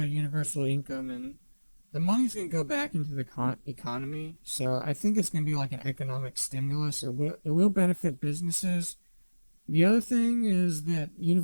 a universal income, and the money's going to go back into the economy. So I think it's going to be like an economic stimulus. It will benefit businesses. The other thing is that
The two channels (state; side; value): inverted; both; correlation -1.00